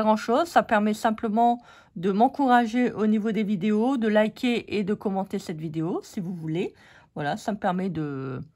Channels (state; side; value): identical; both; correlation 1.00